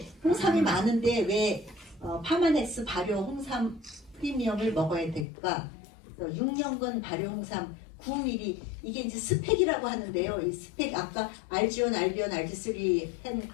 홍삼이 많은데 왜 파마넥스 발효 홍삼 프리미엄을 먹어야 될까? 6년근 발효 홍삼 9ml 이게 이제 스펙이라고 하는데요. 이 스펙 아까 알지온, 알비온, 알지3 한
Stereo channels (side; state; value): right; drops out; at 5.2 s